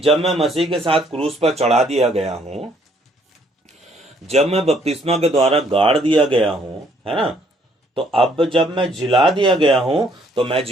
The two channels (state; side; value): normal; both; correlation 0.65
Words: मैं मसीह के साथ क्रूस पर चढ़ा दिया गया हूँ, जब मैं बपतिस्मा के द्वारा गाड़ दिया गया हूँ, है ना, तो अब जब मैं जिला दिया गया हूँ तो मैं